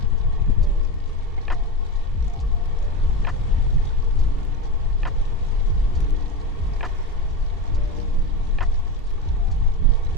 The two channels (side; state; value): both; normal; correlation 0.20